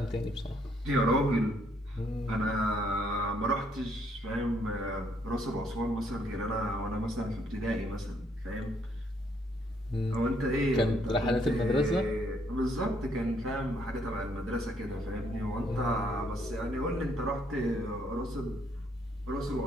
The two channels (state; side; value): normal; both; correlation 0.69